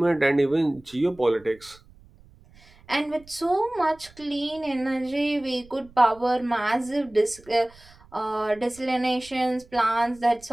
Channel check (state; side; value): noise; right; rumble, 25 dB below the sound